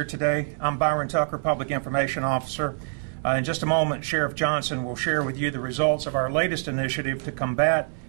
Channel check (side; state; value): left; silent; 61 dB below the other